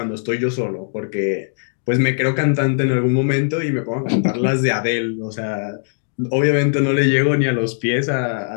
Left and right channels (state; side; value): silent; right; digital silence